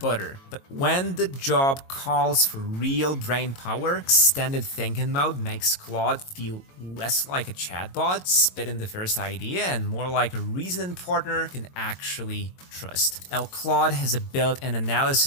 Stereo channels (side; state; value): right; late; 22 ms